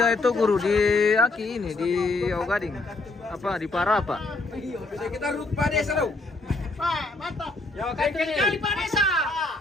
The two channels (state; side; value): quieter; right; 3.2 dB